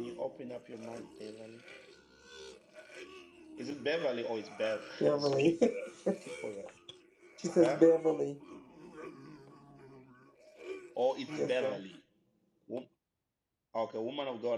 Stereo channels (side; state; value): both; identical; correlation 1.00